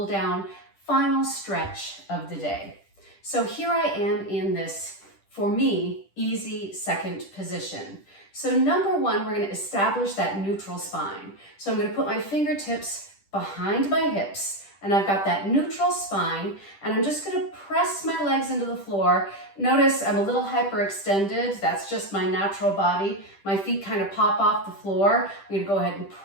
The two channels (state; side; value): late; right; 10 ms